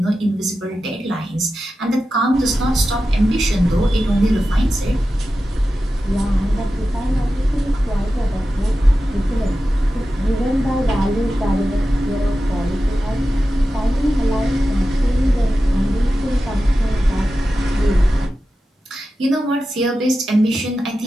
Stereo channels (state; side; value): normal; both; correlation 0.92